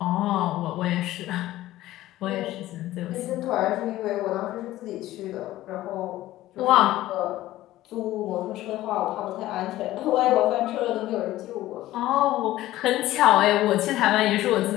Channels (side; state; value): right; quieter; 15.5 dB